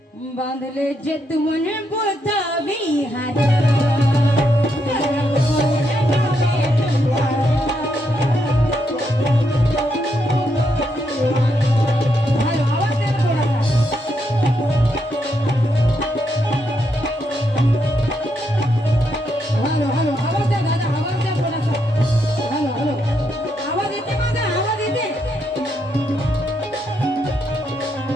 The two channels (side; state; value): both; normal; correlation 0.79